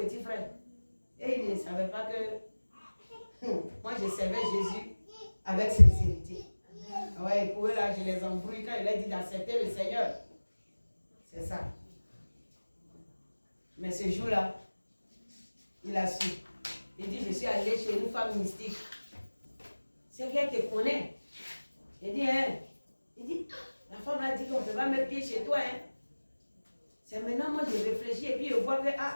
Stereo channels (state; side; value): inverted; both; correlation -1.00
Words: frère. Et il ne savait pas que moi je servais Jésus avec sincérité. Ouais, pour eux là, je les embrouille quand il a dit d'accepter le Seigneur. C'est ça. Mais ce jour-là, il a su. Il dit, je suis allé chez une femme mystique. C'est qu'elle te connaît. Il dit, hein? Il dit, la femme a dit qu'on ne peut pas mettre pied chez toi. Hein? C'est maintenant, moi, je réfléchis et puis je vois que,